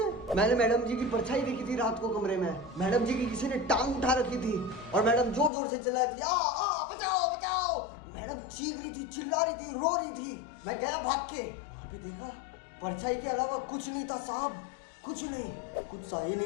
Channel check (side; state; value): right; drops out; at 5.5 s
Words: मैंने मैडम जी की परछाई देखी थी रात को कमरे में। मैडम जी की किसी ने टांग उठा रखी थी और मैडम जोर जोर से चिल्ला रही थी, आ बचाओ बचाओ। मैडम चीख रही थी, चिल्ला रही थी, रो रही थी। मैं गया भाग के, वहां पे देखा परछाई के अलावा कुछ नहीं था साहब, कुछ नहीं। कुछ सही